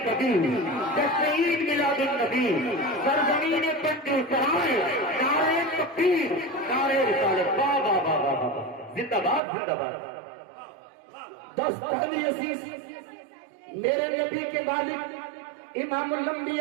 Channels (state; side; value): drops out; left; at 9.4 s